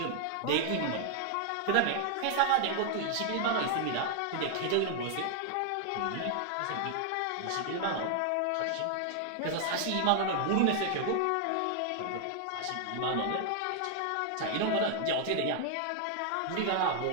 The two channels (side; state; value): both; different; correlation 0.00